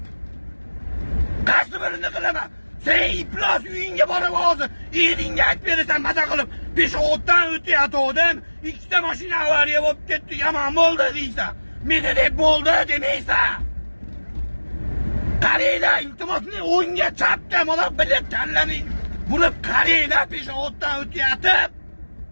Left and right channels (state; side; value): inverted; both; correlation -1.00